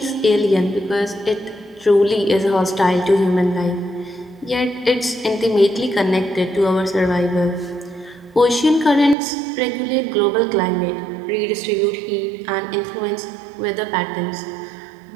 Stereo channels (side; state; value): left; drops out; at 9.2 s